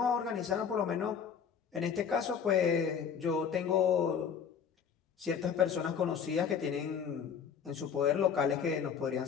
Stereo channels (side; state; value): right; quieter; 7.2 dB